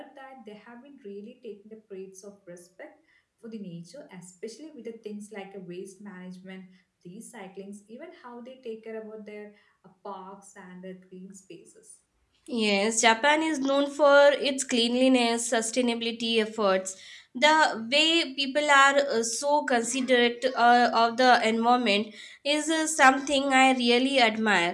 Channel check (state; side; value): identical; both; correlation 1.00